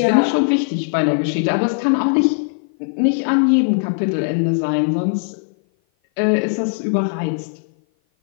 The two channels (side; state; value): right; silent; 56 dB below the other